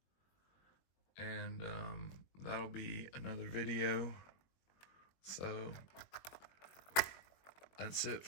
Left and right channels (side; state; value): right; late; 21 ms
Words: And that'll be another video. So that's it